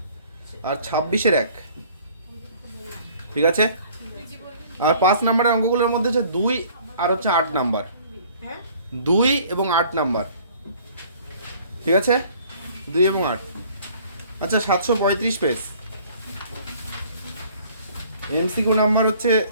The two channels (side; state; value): both; inverted; correlation -0.54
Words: আর 26 এর 1। ঠিক আছে আর 5 নম্বরের অঙ্কগুলোর মধ্যে হচ্ছে 2 আর হচ্ছে 8 নাম্বার, 2 এবং 8 নাম্বার। ঠিক আছে 2 এবং 8। আচ্ছা 735 পেজ এমসিকিউ নাম্বার হচ্ছে